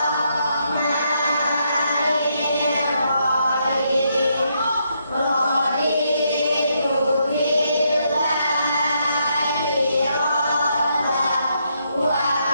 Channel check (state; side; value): inverted; both; correlation -0.77